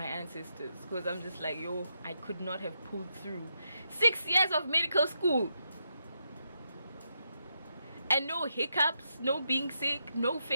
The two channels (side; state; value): both; inverted; correlation -0.82